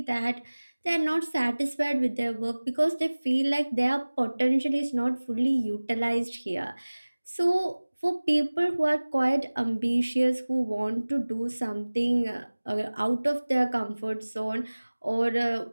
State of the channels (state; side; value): inverted; both; correlation -1.00